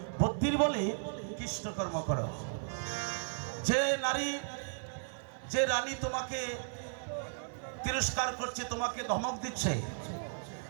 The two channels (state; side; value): silent; left; 54 dB below the other